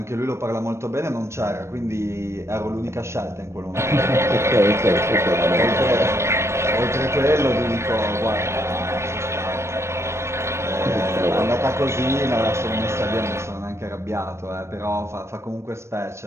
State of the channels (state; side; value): late; left; 0.13 ms